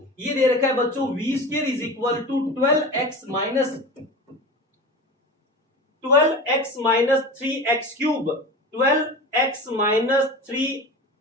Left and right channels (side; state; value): both; normal; correlation 0.31